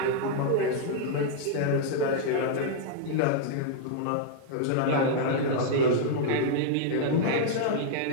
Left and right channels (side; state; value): both; different; correlation -0.01